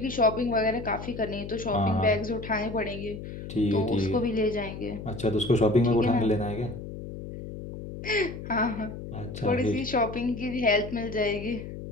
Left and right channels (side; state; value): left; noise; hum, 10 dB below the sound